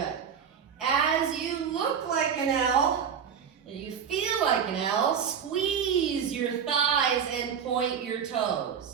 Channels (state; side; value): quieter; left; 7.5 dB